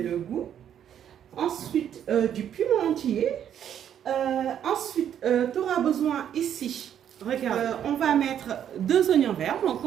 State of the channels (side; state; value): left; quieter; 9.6 dB